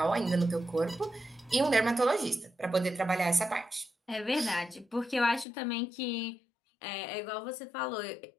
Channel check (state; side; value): drops out; right; at 5.5 s